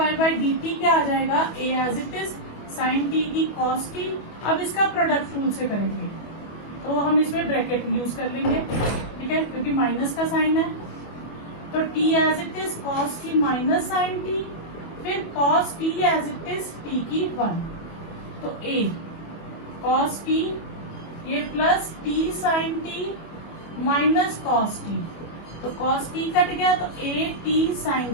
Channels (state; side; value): late; right; 25 ms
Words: by D t क्या आ जाएगा, a as it is sine T की कॉस टी, अब इसका प्रोडक्ट रूल से करेंगे, तो हम इसमें ब्रैकेट यूज कर लेंगे, ठीक है, क्योंकि माइनस का साइन है, तो t as it is cos की माइनस साइन टी, फिर cos t as it is t की 1, तो ए कॉस टी, ये plus T sine T minus cos T, तो कॉस टी कट गया, तो ए टी